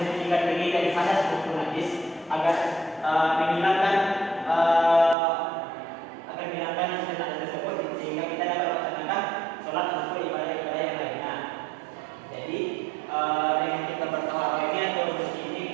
diri dari hadas maupun najis agar menghilangkan hal tersebut sehingga kita dapat melaksanakan sholat maupun ibadah-ibadah yang lainnya. Jadi dengan kita bertaharah ini atau bersih ini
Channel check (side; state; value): left; drops out; at 5.2 s